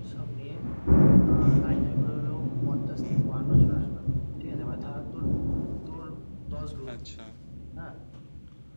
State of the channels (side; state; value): both; inverted; correlation -1.00